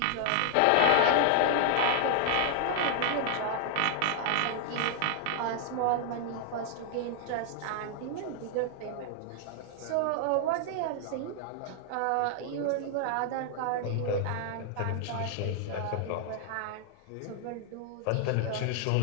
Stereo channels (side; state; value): both; different; correlation 0.00